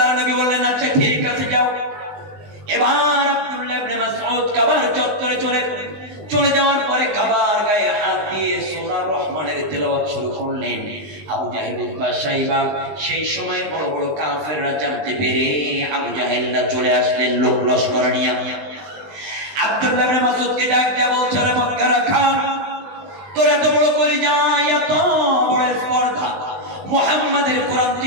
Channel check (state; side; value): late; left; 20 ms